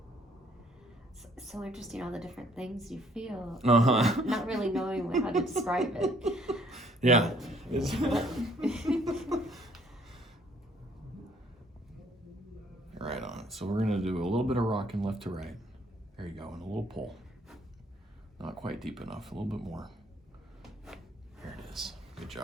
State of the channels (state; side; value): normal; both; correlation 0.63